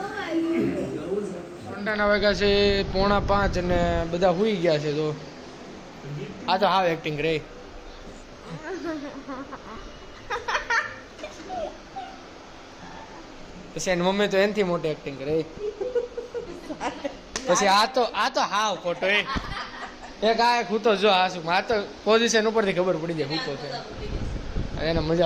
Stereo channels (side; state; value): both; identical; correlation 1.00